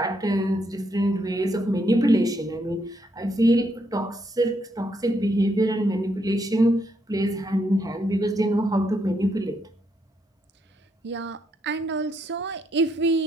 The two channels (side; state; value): both; normal; correlation 0.76